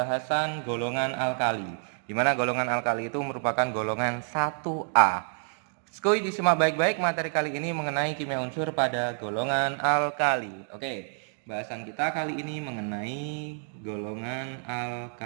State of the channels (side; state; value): left; silent; 58 dB below the other